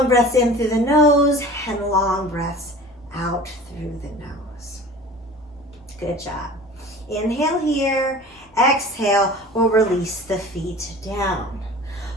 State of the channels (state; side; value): normal; both; correlation 0.41